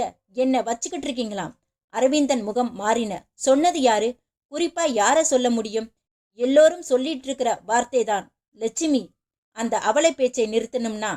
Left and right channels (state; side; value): identical; both; correlation 1.00